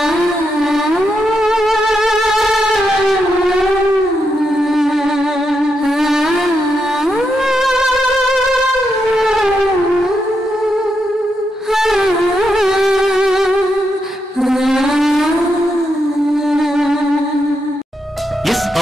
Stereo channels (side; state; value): both; normal; correlation 0.83